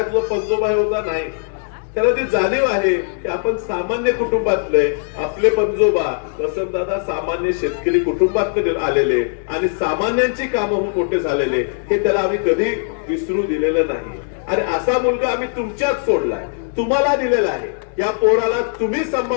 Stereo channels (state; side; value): silent; right; digital silence